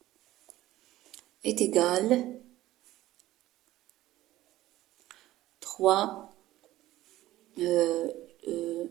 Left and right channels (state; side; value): quieter; left; 15.6 dB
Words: est égal 3,